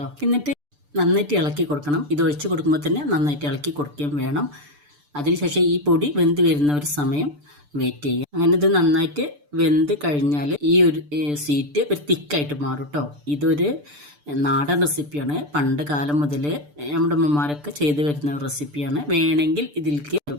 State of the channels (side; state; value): left; late; 6.8 ms